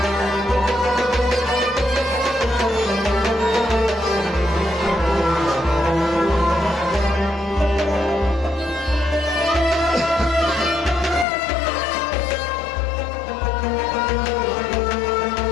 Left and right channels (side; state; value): right; drops out; at 11.2 s